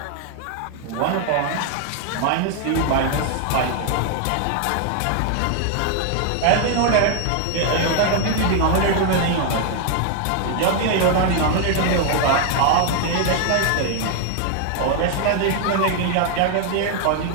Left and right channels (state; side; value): different; both; correlation 0.00